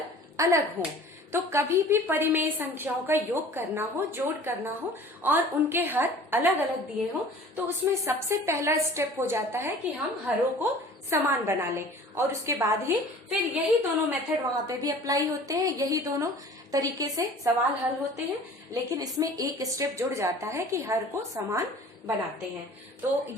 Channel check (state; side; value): normal; both; correlation 0.45